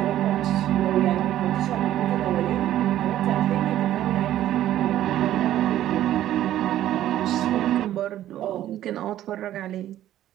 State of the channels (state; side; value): quieter; left; 12.7 dB